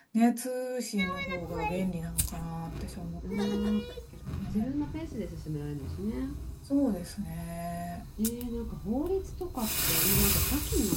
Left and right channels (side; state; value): both; identical; correlation 1.00